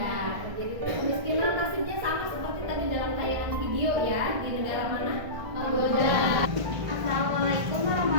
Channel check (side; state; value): left; late; 1.5 ms